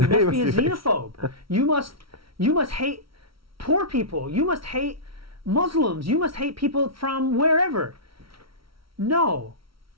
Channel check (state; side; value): late; left; 0.75 ms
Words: must be a xenophobe. You must hate poor people. You must hate Muslims. You must hate people from wherever. No.